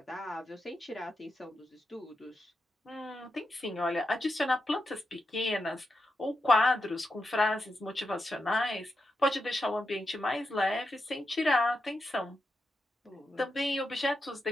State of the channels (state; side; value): normal; both; correlation 0.87